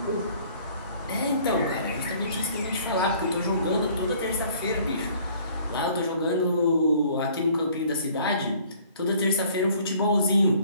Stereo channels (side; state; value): both; inverted; correlation -0.56